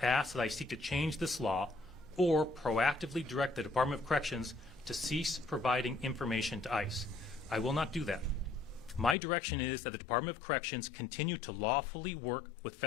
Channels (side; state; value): right; drops out; at 9.2 s